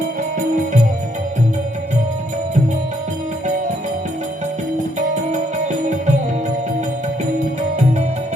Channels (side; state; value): both; normal; correlation 0.71